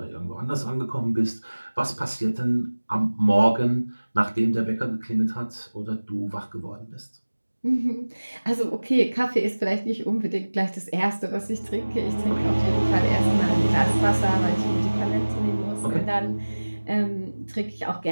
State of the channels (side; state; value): both; inverted; correlation -1.00